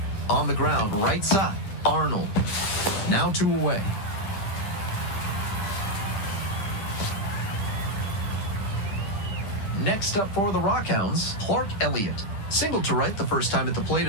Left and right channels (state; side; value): late; right; 10 ms